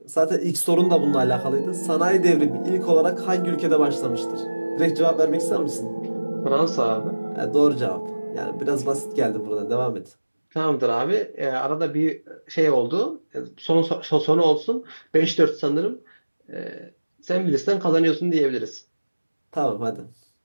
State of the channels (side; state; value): both; inverted; correlation -1.00